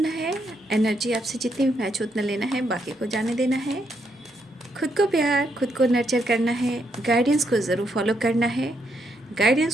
है। एनर्जी आपसे जितनी भी मैच उतना लेना है, बाकी को जाने देना है। खुद को प्यार, खुद को नर्चर करना है। गाइडेंस को ज़रूर फॉलो करना है।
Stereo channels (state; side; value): normal; both; correlation 0.77